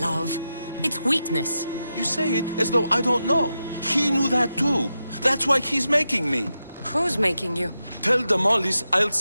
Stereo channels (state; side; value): inverted; both; correlation -0.88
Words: It's weakness. You say it as though I don't know. He knew that too. That's why he's making me. Who's making you? Tell Damalis I'll